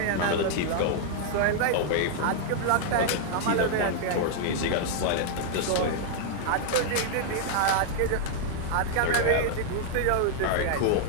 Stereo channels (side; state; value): both; different; correlation -0.01